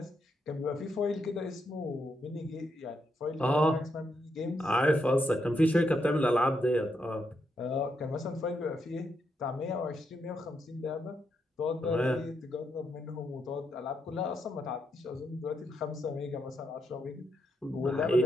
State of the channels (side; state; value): both; normal; correlation 0.81